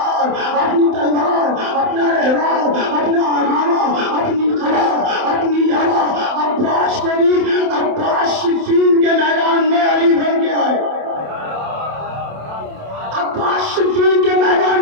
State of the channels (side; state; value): left; late; 27 ms